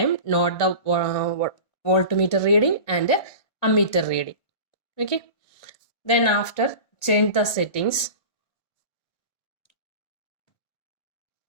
note the voltmeter reading and ammeter reading. Okay. Then after change the settings.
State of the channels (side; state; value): right; late; 1.7 ms